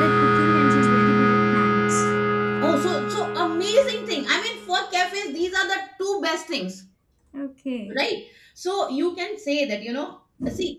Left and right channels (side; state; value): both; identical; correlation 1.00